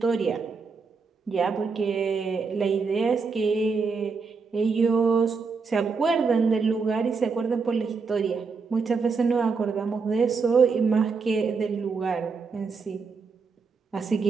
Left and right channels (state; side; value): quieter; left; 4.9 dB